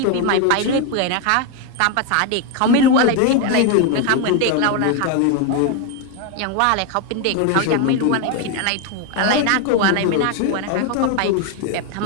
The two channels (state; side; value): different; both; correlation 0.01